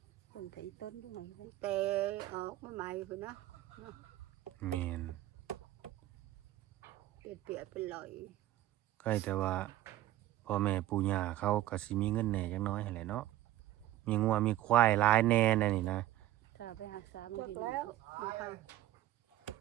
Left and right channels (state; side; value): quieter; left; 14.6 dB